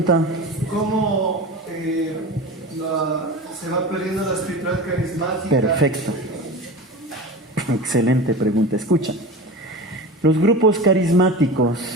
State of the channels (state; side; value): normal; both; correlation 0.30